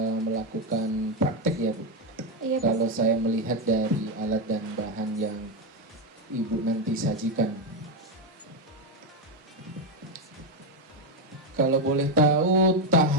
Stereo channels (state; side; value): normal; both; correlation 0.08